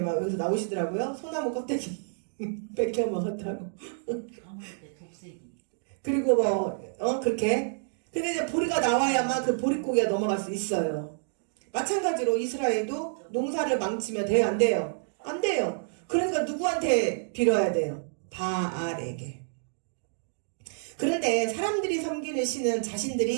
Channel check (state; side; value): silent; left; digital silence